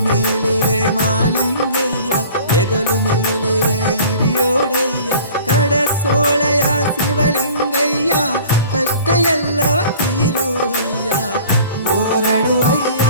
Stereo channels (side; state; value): both; inverted; correlation -0.47